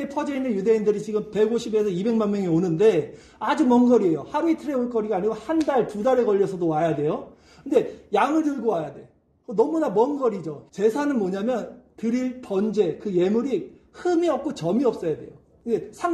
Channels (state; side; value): identical; both; correlation 1.00